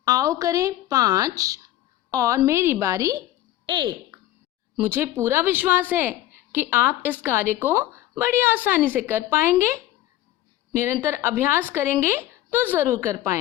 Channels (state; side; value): quieter; right; 14.3 dB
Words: आओ करें 5 और मेरी बारी 1। मुझे पूरा विश्वास है कि आप इस कार्य को बड़ी आसानी से कर पाएंगे। निरंतर अभ्यास करेंगे तो ज़रूर कर